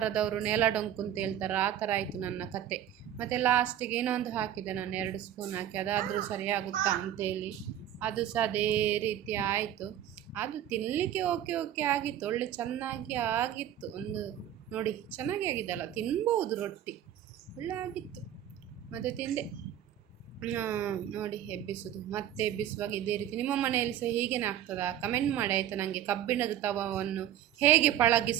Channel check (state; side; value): quieter; left; 11.2 dB